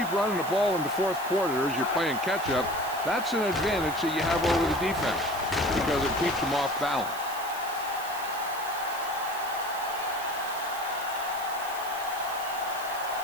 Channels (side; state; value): right; noise; hiss, 13 dB below the sound